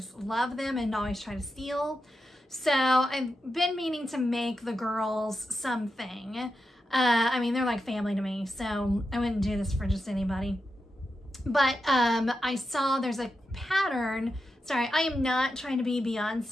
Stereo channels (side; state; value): both; normal; correlation 0.88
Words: love them and always try to steal. So I've been meaning to make the girls something. I mean, they're like family to me, so I wouldn't do this for just anybody. But I saw there's a pattern. Sorry, I am not trying to be